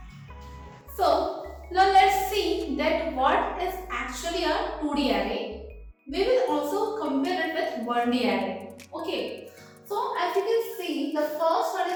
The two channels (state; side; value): identical; both; correlation 1.00